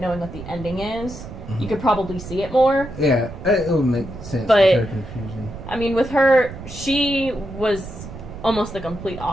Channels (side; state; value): right; noise; rumble, 12 dB below the sound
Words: knowing what the ending is, you could probably see it more. Yeah, it would make sense But- with her confusion. I mean, with her, she was almost the complete